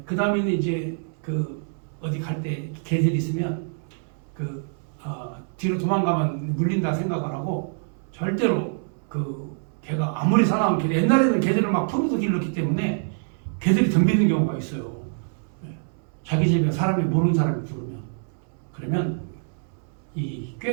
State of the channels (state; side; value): silent; left; 62 dB below the other